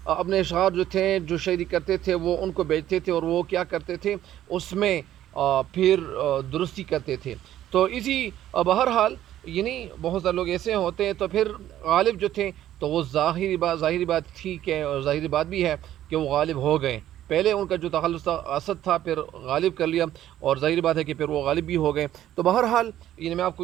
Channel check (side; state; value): left; quieter; 12.4 dB